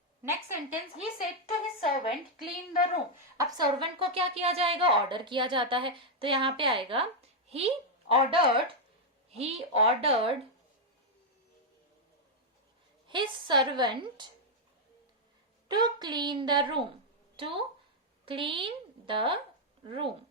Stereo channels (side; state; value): both; normal; correlation -0.01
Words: Next sentence, he said to his servant clean the room। अब सर्वेंट को क्या किया जाएगा? ऑर्डर किया जाता है, तो यहाँ पे आएगा he ordered his servant to clean the room।